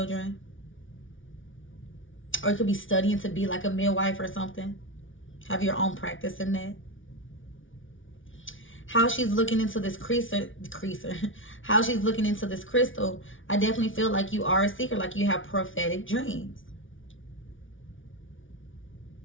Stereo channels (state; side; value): late; right; 0.57 ms